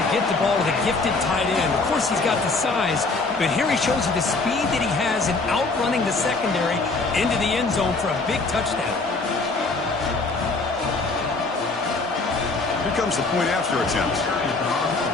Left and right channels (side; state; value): right; quieter; 3.7 dB